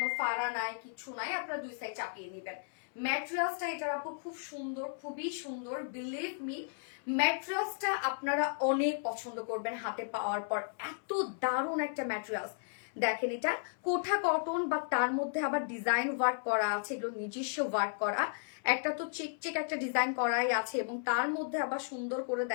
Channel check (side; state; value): right; silent; 55 dB below the other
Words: ফাড়া নাই কিছু নাই, আপনারা দুই সাইড চাপিয়ে নিবেন। ম্যাটেরিয়ালসটা এটার আপু খুব সুন্দর, খুবই সুন্দর, বিলিভ মি ম্যাটেরিয়ালসটা আপনারা অনেক পছন্দ করবেন হাতে পাওয়ার পর। এত দারুণ একটা ম্যাটেরিয়ালস। দেখেন এটা কোঠা কটন, বা তার মধ্যে আবার ডিজাইন ওয়ার্ক করা আছে, এগুলো নিজস্ব ওয়ার্ক করা। একটা তো চেক একটা ডিজাইন করাই আছে এবং তার মধ্যে আবার সুন্দর করে